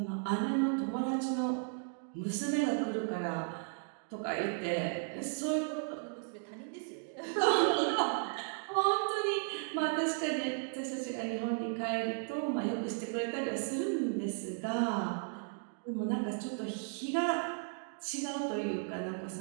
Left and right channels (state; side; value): silent; left; 54 dB below the other